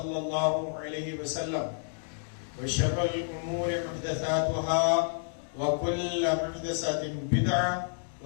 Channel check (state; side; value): silent; right; digital silence